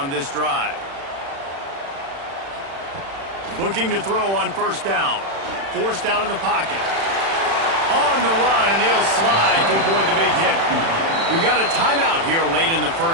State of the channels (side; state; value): left; late; 36 ms